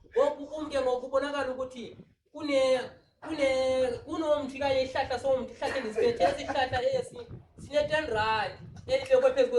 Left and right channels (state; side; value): identical; both; correlation 1.00